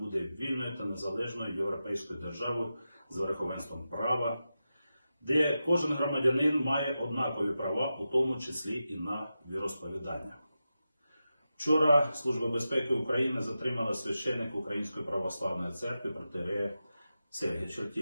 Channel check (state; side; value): inverted; both; correlation -0.91